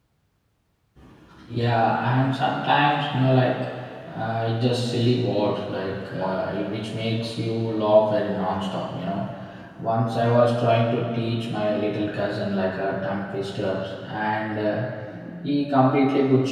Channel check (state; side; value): identical; both; correlation 1.00